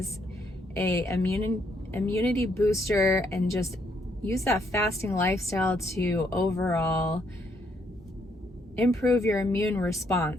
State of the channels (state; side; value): normal; both; correlation 0.72